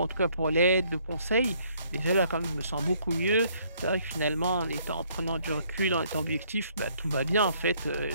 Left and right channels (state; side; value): inverted; both; correlation -0.65